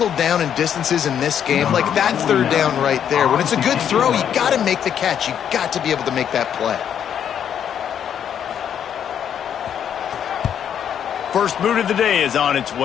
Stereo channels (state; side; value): quieter; right; 8.9 dB